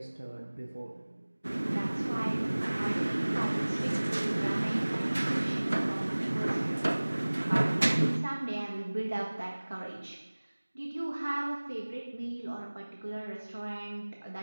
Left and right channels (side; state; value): both; inverted; correlation -1.00